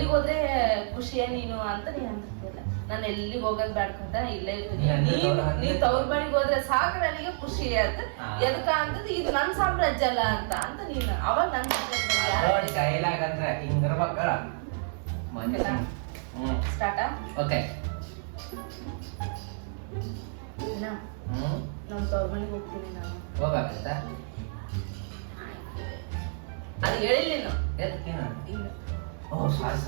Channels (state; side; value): silent; left; 58 dB below the other